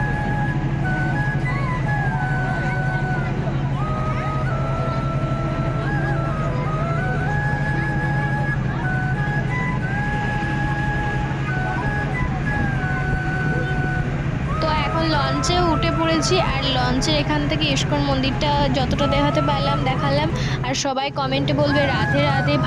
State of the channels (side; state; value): both; identical; correlation 1.00